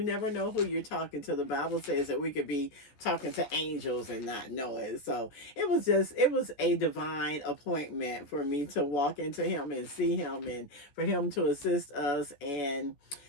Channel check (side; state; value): right; late; 14 ms